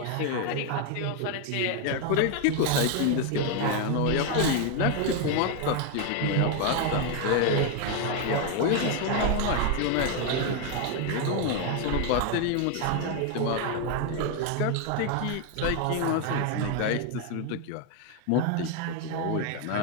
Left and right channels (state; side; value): different; both; correlation 0.01